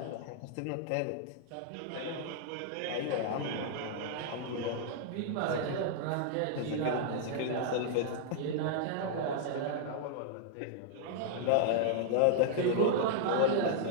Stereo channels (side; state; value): both; different; correlation -0.01